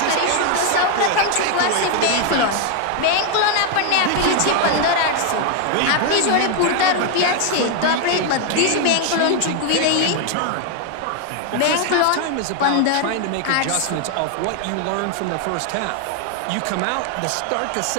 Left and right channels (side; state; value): both; different; correlation 0.00